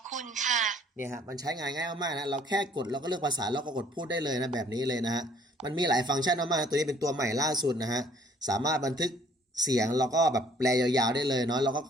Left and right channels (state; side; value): normal; both; correlation 0.59